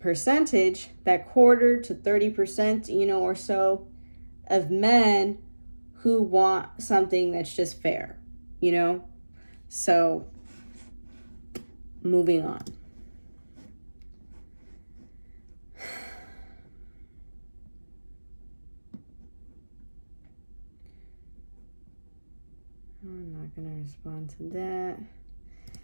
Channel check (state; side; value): inverted; both; correlation -1.00